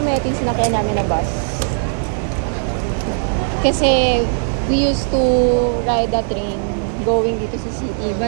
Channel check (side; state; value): left; silent; 67 dB below the other